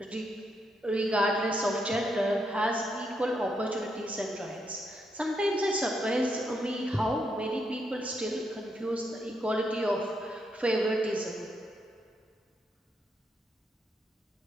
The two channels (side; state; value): both; normal; correlation 0.79